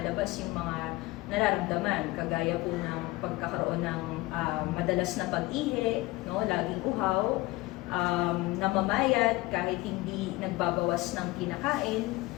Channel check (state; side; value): quieter; right; 20.3 dB